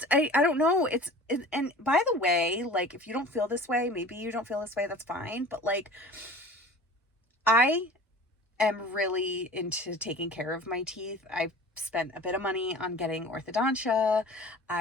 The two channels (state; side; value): normal; both; correlation 0.41